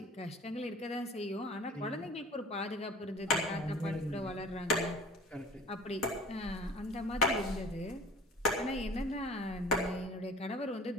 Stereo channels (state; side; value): normal; both; correlation 0.44